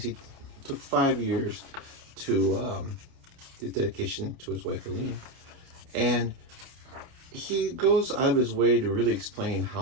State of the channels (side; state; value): left; late; 29 ms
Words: he took 5 years to the dedication to his wife Aline, and he goes out of his way to really explain